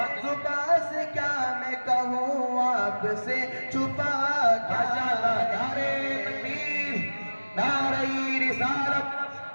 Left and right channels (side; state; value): both; inverted; correlation -1.00